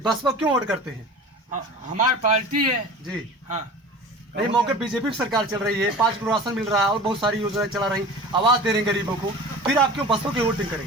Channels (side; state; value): both; normal; correlation 0.38